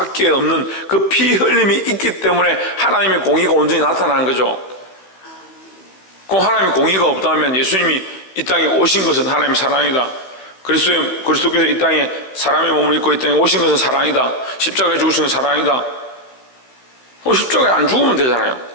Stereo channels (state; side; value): late; right; 16 ms